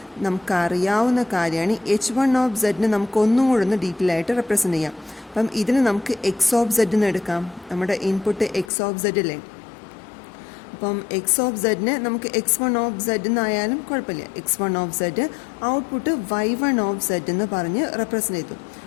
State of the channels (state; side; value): drops out; right; at 8.7 s